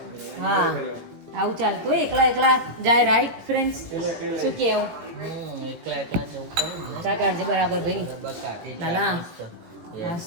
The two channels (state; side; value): late; left; 17 ms